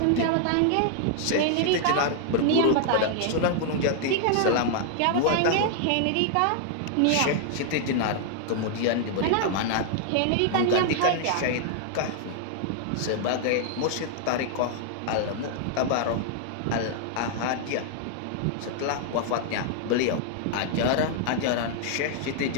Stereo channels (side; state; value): both; different; correlation 0.00